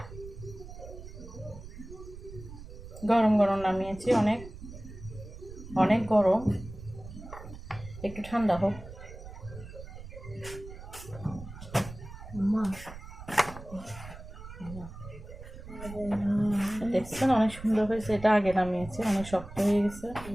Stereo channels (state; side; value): noise; right; rumble, 14 dB below the sound